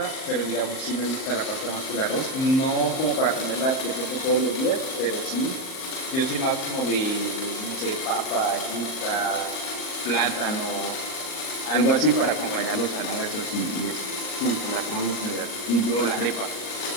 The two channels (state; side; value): late; right; 39 ms